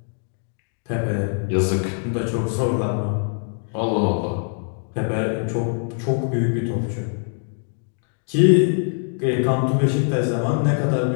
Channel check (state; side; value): silent; right; 62 dB below the other